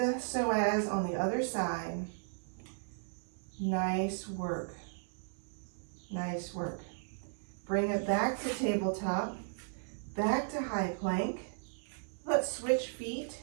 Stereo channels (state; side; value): silent; left; 54 dB below the other